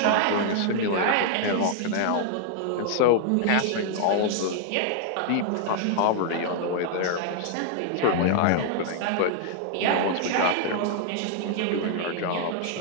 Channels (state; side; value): different; both; correlation -0.01